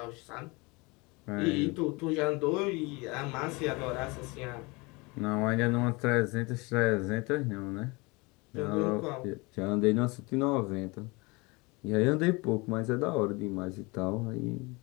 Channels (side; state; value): right; quieter; 26.2 dB